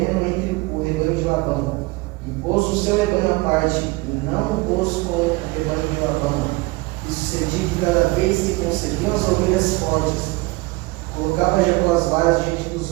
entre o rebanho de Labão, e pôs o seu rebanho à parte, e não o pôs com o rebanho de Labão. E sucedia que cada vez que concebiam as ovelhas fortes, colocava Jacó as varas diante dos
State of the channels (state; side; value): quieter; left; 23.2 dB